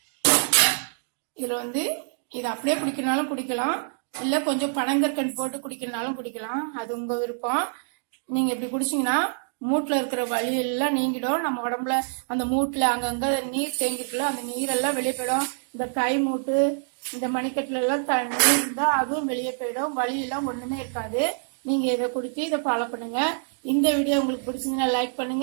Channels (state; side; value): silent; left; digital silence